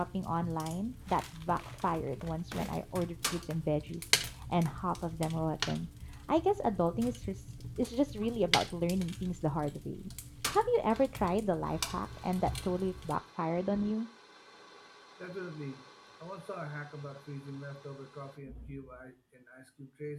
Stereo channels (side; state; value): both; identical; correlation 1.00